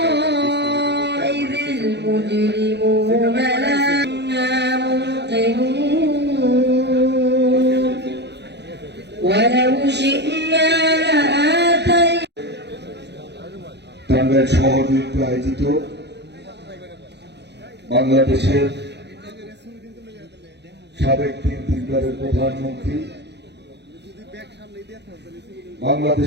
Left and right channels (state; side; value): late; left; 0.50 ms